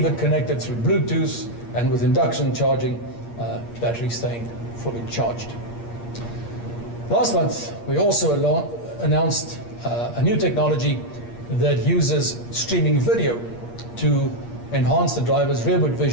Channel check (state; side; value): late; right; 8.5 ms